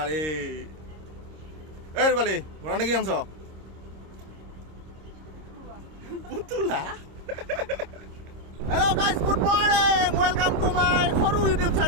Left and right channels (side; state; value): left; late; 26 ms